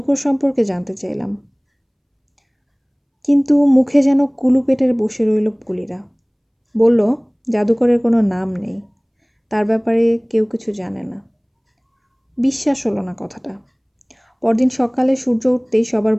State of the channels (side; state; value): both; identical; correlation 1.00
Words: সম্পর্কে জানতে চাইলাম, কিন্তু মুখে যেন কুলু পেটে বসে রইল কুলিরা। বলল, জাদুকরের কোনো নাম নেই, তার ব্যাপারে কেউ কিছু জানে না। বিশ্বাস হলো না কথাটা। পরদিন সকালে সূর্য উঠতেই সবার